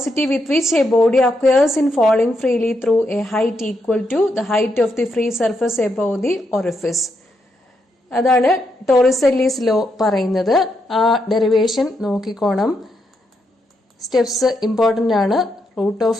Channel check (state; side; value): normal; both; correlation 0.80